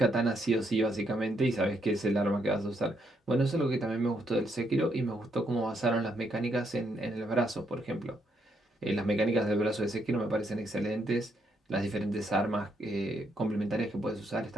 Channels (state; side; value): normal; both; correlation 0.75